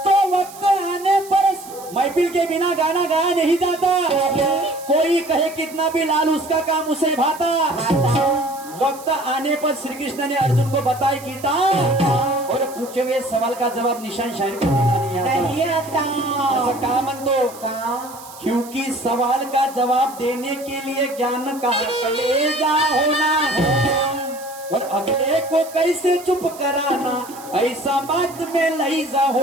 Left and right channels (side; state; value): right; noise; hiss, 18 dB below the sound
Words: तो वक्त आने पर महफिल के बिना गाना गाया नहीं जाता। कोई कहे कितना भी लाल उसका काम उसे भाता। वक्त आने पर श्री कृष्ण ने अर्जुन को बताई गीता और पूछे हुए सवाल का जवाब निशान शायर को देना नहीं आता। ऐसा कहा मन दो का, क्योंकि सवाल का जवाब देने के लिए ज्ञान का कलेजा होना और अगले को कैसे चुप कराना, ऐसा बात में लहीजा